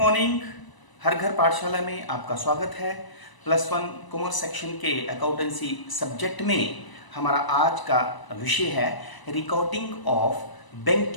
हर घर पाठशाला में आपका स्वागत है। +1 कॉमर्स सेक्शन के अकाउंटेंसी सब्जेक्ट में हमारा आज का विषय है recording of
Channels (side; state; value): right; late; 1.0 ms